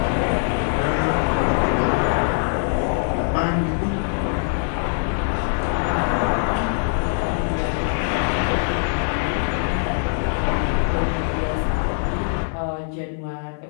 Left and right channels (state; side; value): silent; right; 56 dB below the other